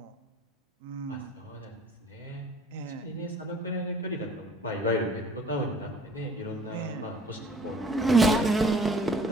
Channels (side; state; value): both; normal; correlation 0.54